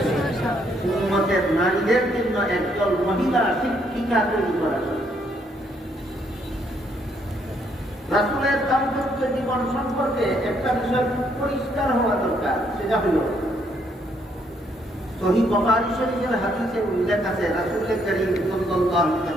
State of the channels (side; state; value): both; normal; correlation 0.71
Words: উম্মতের নারীদের জন্য একজন মহিলা শিক্ষিকা তৈরি করার স্বার্থে। রাসূলের দাম্পত্য জীবন সম্পর্কে একটা বিষয় পরিষ্কার হওয়া দরকার, সেটা হল সহিহ বুখারী শরীফের হাদিসে উল্লেখ আছে, রাসূল করিম সাল্লাল্লাহু আলাইহি